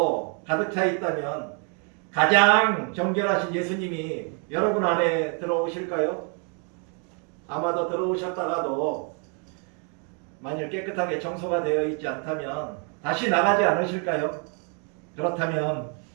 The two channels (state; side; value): quieter; left; 38.8 dB